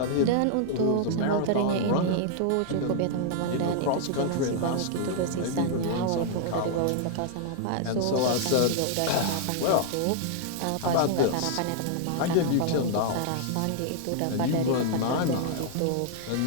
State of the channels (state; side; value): different; both; correlation -0.01